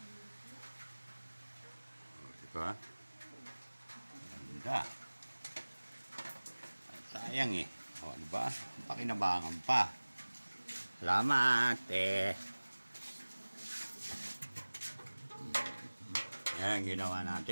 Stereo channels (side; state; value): both; inverted; correlation -1.00